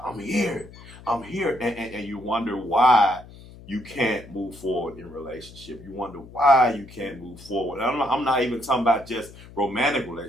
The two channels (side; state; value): left; noise; hum, 19 dB below the sound